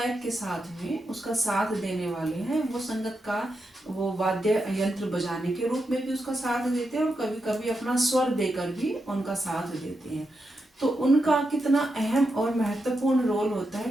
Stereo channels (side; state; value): both; normal; correlation 0.86